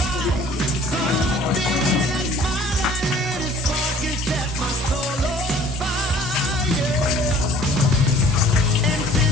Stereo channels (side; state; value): both; normal; correlation 0.52